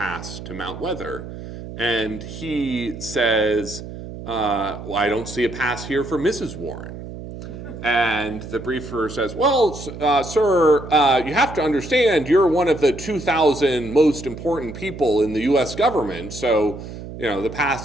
to Mount Weather. And he says, well, I don't see a pass here for Mrs. Warren. And the briefer says, well, sir, you have to understand you're one of the 2,000 most important people in the U.S. government, so the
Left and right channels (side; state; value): right; noise; hum, 11 dB below the sound